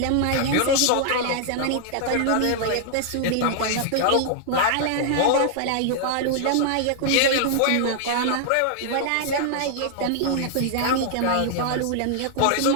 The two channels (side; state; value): both; different; correlation 0.00